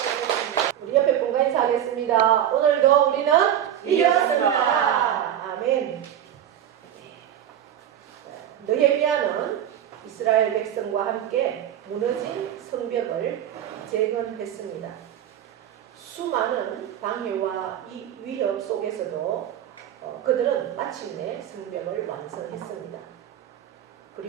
우리 옆에 분과 인사하겠습니다. 오늘도 우리는 이겼습니다. 아멘. 느헤미야는 이스라엘 백성과 함께 무너진 성벽을 재건했습니다. 수많은 방해와 위협 속에서도 그들은 마침내 성벽을 완성했습니다.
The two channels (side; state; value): left; quieter; 10.5 dB